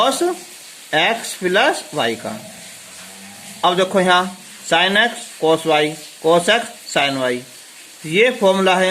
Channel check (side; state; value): both; identical; correlation 1.00